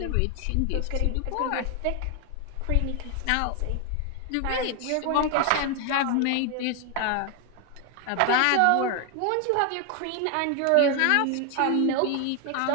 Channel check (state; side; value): different; both; correlation 0.01